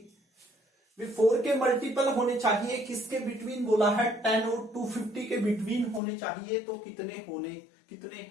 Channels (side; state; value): right; drops out; at 6.0 s